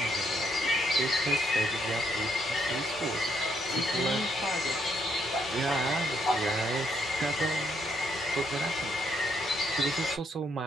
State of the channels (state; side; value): normal; both; correlation 0.74